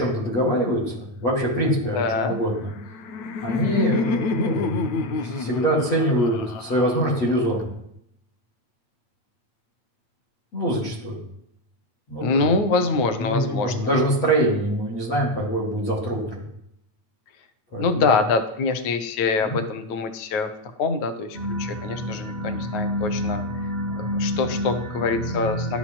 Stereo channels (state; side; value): late; right; 9.4 ms